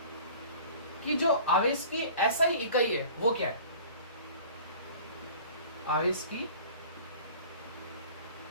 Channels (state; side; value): inverted; both; correlation -0.44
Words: कि जो आवेश की ऐसा ही इकाई है वो क्या है? आवेश की